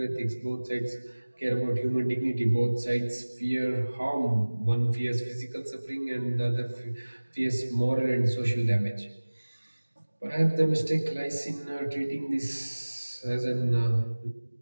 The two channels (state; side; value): inverted; both; correlation -1.00